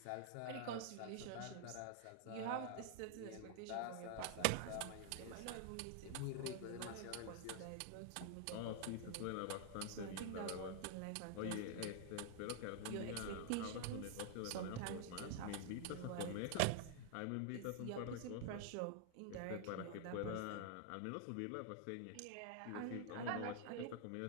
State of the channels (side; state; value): both; different; correlation 0.00